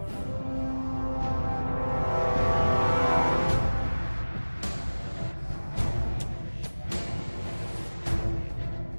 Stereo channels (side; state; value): both; inverted; correlation -1.00